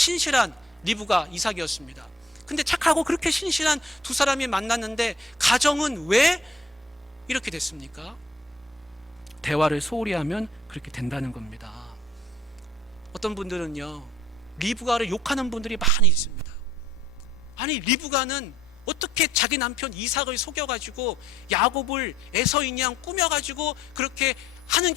리브가 이삭이었습니다. 근데 착하고 그렇게 신실한 두 사람이 만났는데 가정은 왜 이렇게 됐습니까? 대화를 소홀히 하면 그렇게 된다는 겁니다. 어떤 분들은요, 리브가를 욕하는 분들이 많이 있습니다. 아니, 리브가는 어떻게 자기 남편 이삭을 속여가지고 야곱을 에서인 양 꾸며가지고 그렇게 하는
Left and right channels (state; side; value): normal; both; correlation 0.59